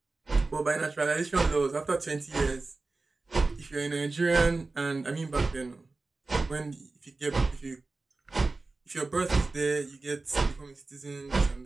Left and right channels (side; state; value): left; quieter; 3.5 dB